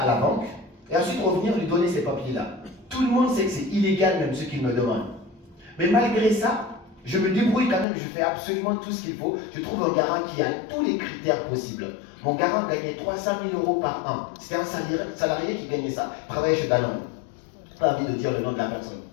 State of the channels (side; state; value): right; drops out; at 7.9 s